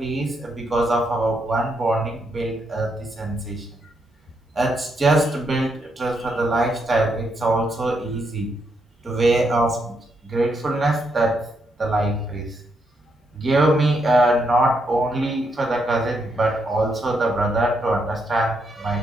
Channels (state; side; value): normal; both; correlation 0.78